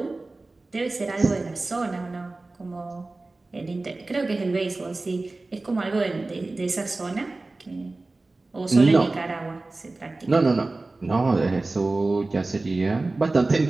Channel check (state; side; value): quieter; left; 3.2 dB